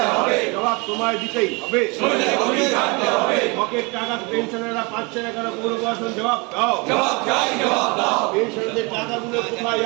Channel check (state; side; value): quieter; left; 28.6 dB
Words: জবাব তোমায় দিতেই হবে। হকের টাকা পেনশনাররা পাচ্ছে না কেন? পৌর প্রশাসন জবাব দাও। পেনশনারদের টাকাগুলো কোথায়